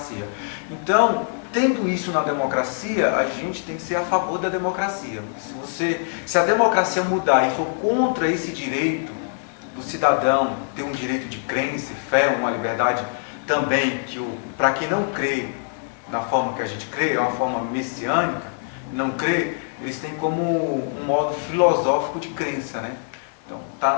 Então, tendo isso na democracia, a gente tem que ser a favor da democracia. Se a democracia mudar e for contra esse direito do cidadão ter um direito de crença, fé, uma liberdade também, para quem não crê na forma que a gente crê, é uma forma messiânica, não crê, eles têm como um modo filosófico de crença, né? Então, está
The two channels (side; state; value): right; silent; 63 dB below the other